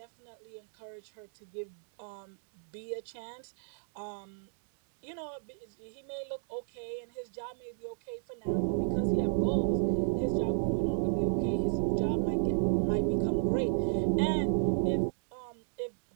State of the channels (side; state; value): left; silent; digital silence